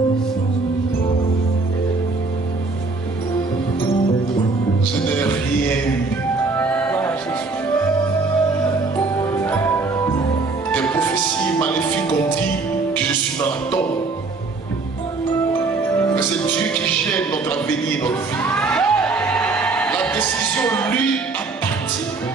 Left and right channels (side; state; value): left; quieter; 3.8 dB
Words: Je n'ai rien eu. Des prophéties maléfiques ont dit que je suis dans la tombe. Mais c'est Dieu qui gère notre avenir et notre vie. La décision lui appartient.